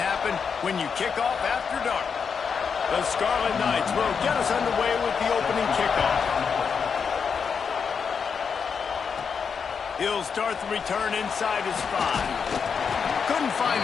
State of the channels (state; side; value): quieter; right; 6.2 dB